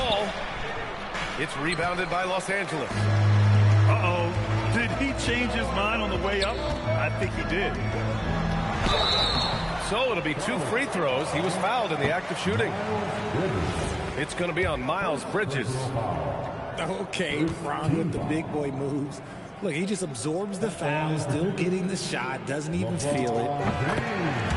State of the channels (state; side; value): identical; both; correlation 1.00